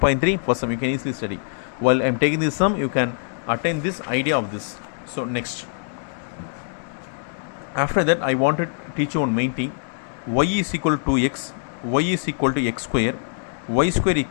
first sum you can easily study. While I am taking this sum, you can attain this idea of this. So next, after that I want to teach you one main thing. Y is equal to x, y is equal to x square, y square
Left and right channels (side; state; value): right; silent; 63 dB below the other